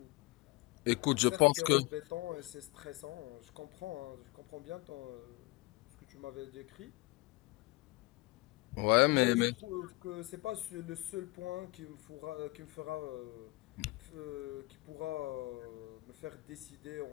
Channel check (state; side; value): quieter; right; 22.3 dB